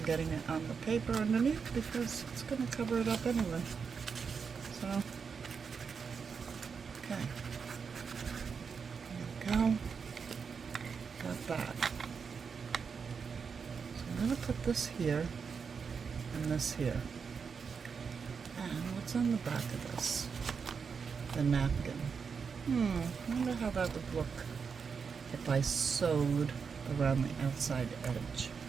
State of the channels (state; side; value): quieter; left; 5.9 dB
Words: getting it on the paper underneath because it's going to cover it up anyway. So, okay. There we go. Got that. So I'm going gonna put this here and this here. And what's on the back of this? The napkin. I wonder how that would look if I sewed around the outside edge.